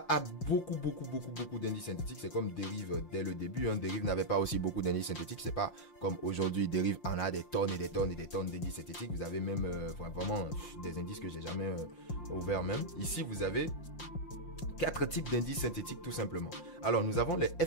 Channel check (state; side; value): late; right; 5.7 ms